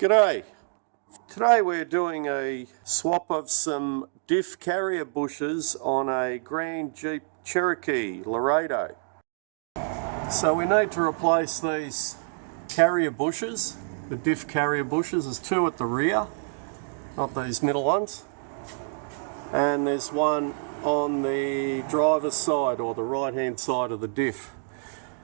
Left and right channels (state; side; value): silent; left; digital silence